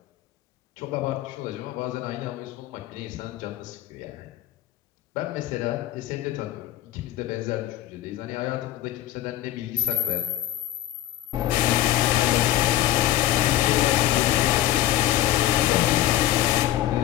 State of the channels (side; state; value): right; quieter; 13.9 dB